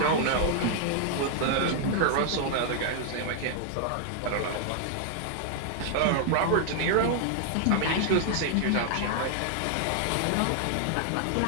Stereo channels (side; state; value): both; different; correlation 0.00